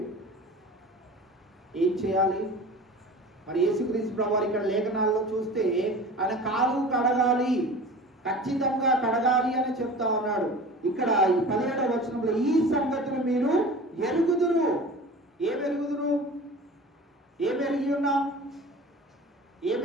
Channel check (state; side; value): normal; both; correlation 0.38